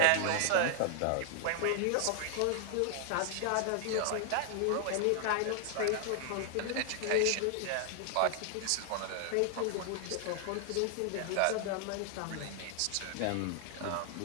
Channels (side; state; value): both; different; correlation 0.00